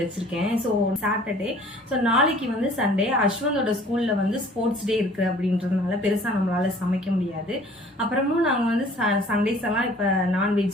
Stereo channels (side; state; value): both; normal; correlation 0.52